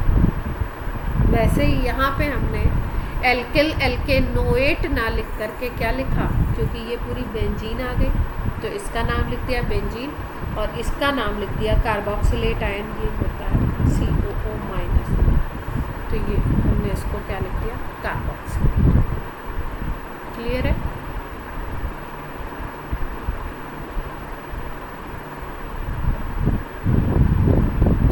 वैसे ही यहाँ पे हमने एल्किल एल्केनोएट ना लिख करके क्या लिखा? क्योंकि ये पूरी बेंजीन आ गई, तो इसका नाम लिख दिया बेंजीन और इसका नाम लिख दिया कार्बोक्सिलेट आयन। ये होता है COO-। तो ये हमने इसको क्या लिख दिया? कार्बोक्सिलेट। क्लियर है?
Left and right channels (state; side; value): identical; both; correlation 1.00